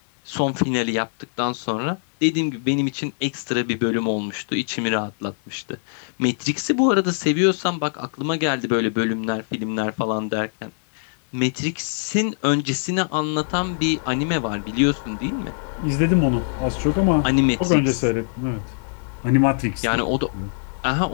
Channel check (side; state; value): right; silent; digital silence